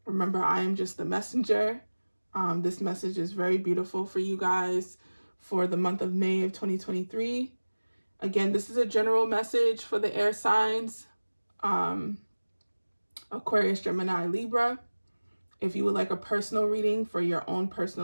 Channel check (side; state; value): both; inverted; correlation -1.00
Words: Remember, I am just the messenger. This message is very beautiful for you guys for the month of May of 2023. Again, this is a general message for the air signs, Aquarius, Gemini, Libra. If you would like a personal reading for your own